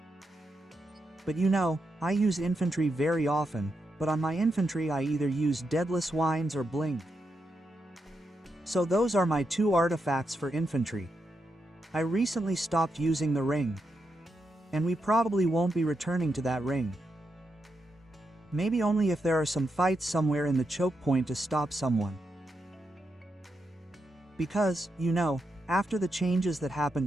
But you know, I use infantry very often, but on my infantry I either use Deadless Wines or Blink. So those are my 2 artifacts for infantry. I recently stopped using the ring, and we probably won't be returning to that ring. Maybe only if there are some fights somewhere in the choke point to stop someone. Because, you know, after the changes that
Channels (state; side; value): normal; both; correlation 0.84